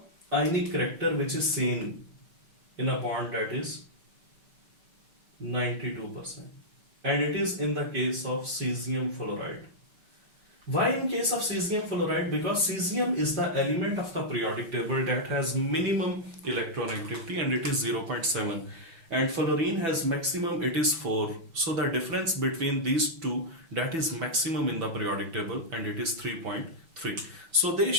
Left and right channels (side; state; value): left; late; 6.1 ms